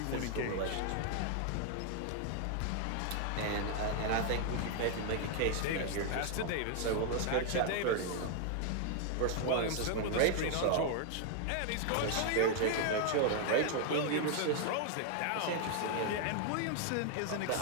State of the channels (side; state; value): both; different; correlation 0.00